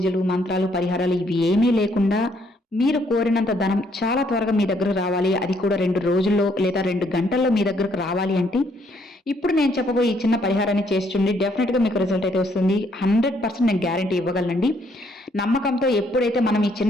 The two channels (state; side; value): normal; both; correlation 0.69